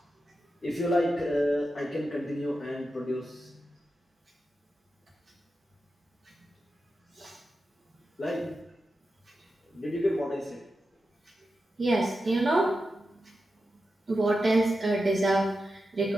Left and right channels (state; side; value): normal; both; correlation 0.90